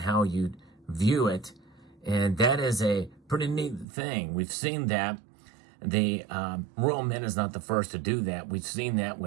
you view it. And that is a pretty neat thing. We've seen that. The Royal Mint is not the first to do that. We've seen that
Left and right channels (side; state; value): left; drops out; at 3.9 s